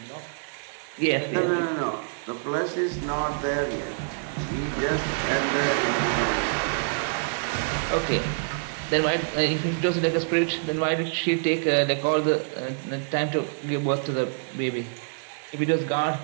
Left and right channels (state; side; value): silent; left; digital silence